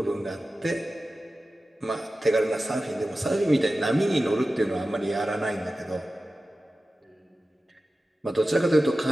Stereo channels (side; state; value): both; normal; correlation 0.94